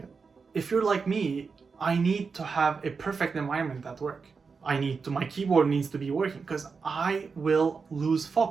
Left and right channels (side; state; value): left; quieter; 5.1 dB